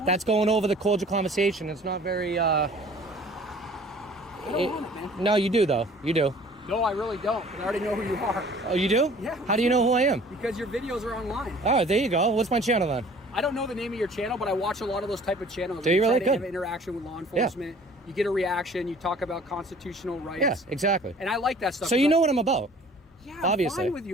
that's going over the cordial conversation. It's not very... I don't want it, man. No, you do, though. You do. No, I really don't. I already know who you are. Oh, you do? Yeah. How do you know who I am? Because your videos are online. All right, there you go. What's my channel then? I don't know the name of your channel, but I watch a lot of those type of channels. Do you really? Good. Have interaction with law enforcement. Yeah. You get a reaction. You talk about constitutional rights. Yeah, exactly. And I like that stuff. So you know what I'm about. Yeah, obviously. I'm fine with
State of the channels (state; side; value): normal; both; correlation 0.50